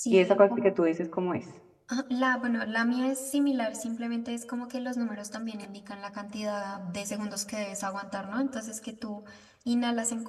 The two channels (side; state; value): both; identical; correlation 1.00